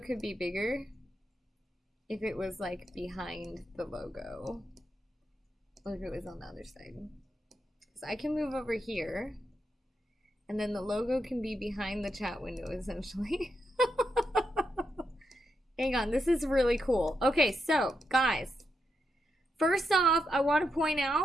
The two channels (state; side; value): normal; both; correlation 0.84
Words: be bigger if it was like behind the logo, or if it was on the other side. So I can move over here, and then the logo can be behind the chat window, essentially. Hang on, this is really cool. Okay, so guys, first off, I want to point